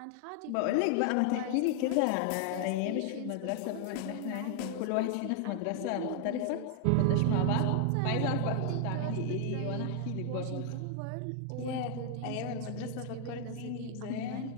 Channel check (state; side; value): different; both; correlation 0.00